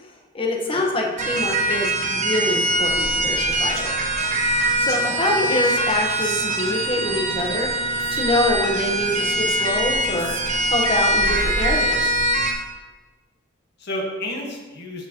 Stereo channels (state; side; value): normal; both; correlation 0.10